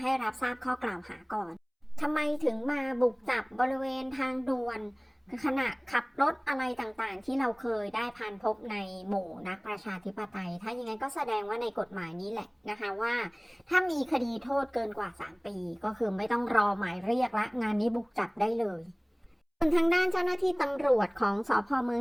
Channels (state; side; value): identical; both; correlation 1.00